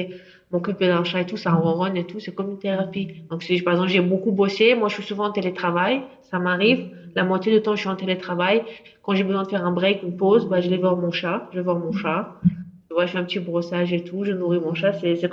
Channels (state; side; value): identical; both; correlation 1.00